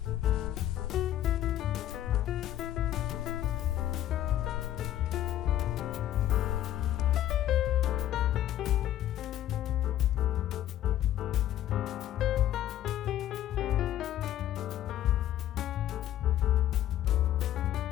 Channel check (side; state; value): right; quieter; 12.4 dB